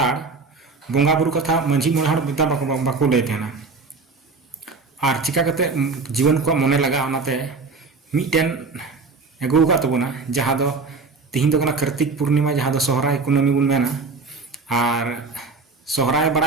बोंगा बुरु कथा मंझी मोने हड़ बिता बाको ले तेना और चिका कते जीवन को मने लगा ओनाते मिटेन एगु का तबना जहां दो तीन दो कना कार्तिक पूर्णिमा जहां दो सोहराय कुनमी बुन मेना और सोहराय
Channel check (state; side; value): quieter; left; 4.3 dB